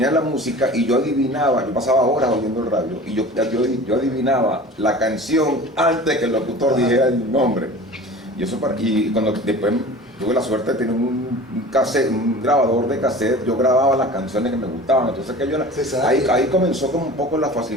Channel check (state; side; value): normal; both; correlation 0.39